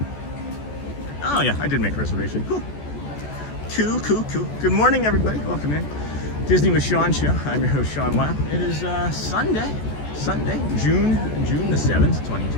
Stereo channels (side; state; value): right; late; 14 ms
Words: Oh yeah, I did make a reservation. Cool. Cool. Good morning, everybody. Welcome in. Disney with Sean show. I'm your host, Sean Weil. It is Sunday, June the 7th,